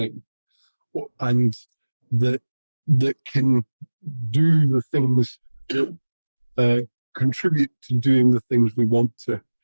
and that can do the things that contribute to doing the things we want to.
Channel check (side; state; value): both; inverted; correlation -1.00